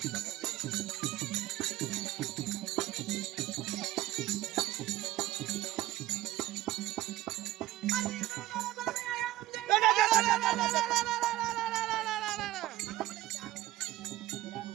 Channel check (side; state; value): left; quieter; 15.9 dB